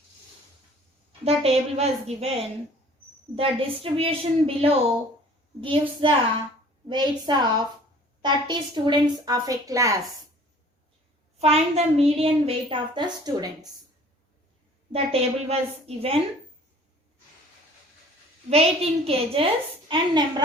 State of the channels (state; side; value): normal; both; correlation 0.51